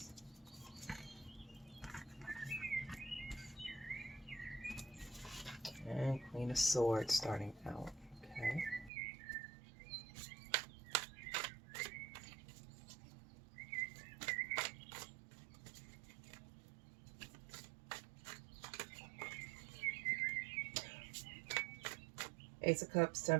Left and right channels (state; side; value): drops out; left; at 8.9 s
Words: And Queen of Swords starting out. Okay. Ace of Cups,